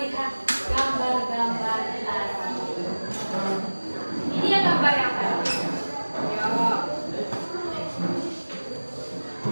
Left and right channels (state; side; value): inverted; both; correlation -1.00